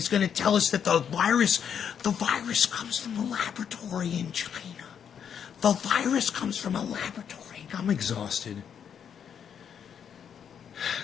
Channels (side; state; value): right; quieter; 8.0 dB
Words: going to tell us that the virus comes from a laboratory in China. The virus comes from a laboratory. I'm exhausted.